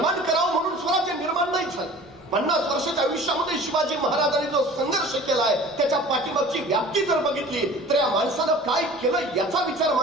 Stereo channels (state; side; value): normal; both; correlation 0.44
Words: करावं म्हणून स्वराज्य निर्माण नाही झालं। 50 वर्षाच्या आयुष्यामध्ये शिवाजी महाराजांनी जो संघर्ष केलाय त्याच्या पाठीमागची व्याप्ती जर बघितली तर या माणसानं काय केलं याचा विचार